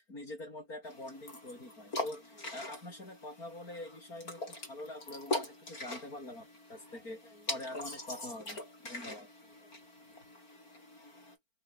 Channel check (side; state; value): right; late; 4.4 ms